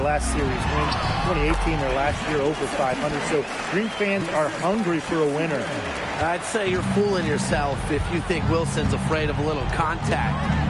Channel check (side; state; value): both; identical; correlation 1.00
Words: last series win. 2018, their last year over 500. So Green fans are hungry for a winner. I'd say you're fooling yourself if you think Wilson's afraid of a little